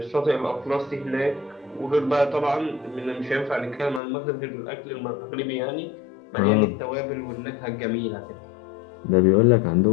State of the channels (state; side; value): drops out; right; at 4.0 s